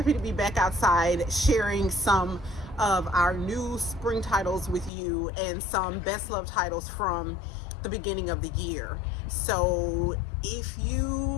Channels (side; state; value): right; drops out; at 4.9 s